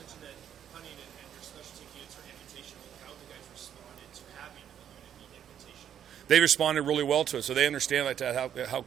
They responded really well to it, so they understand like that how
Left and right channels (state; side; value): quieter; left; 9.6 dB